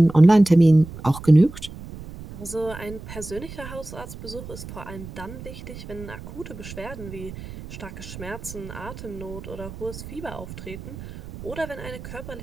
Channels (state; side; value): noise; right; rumble, 13 dB below the sound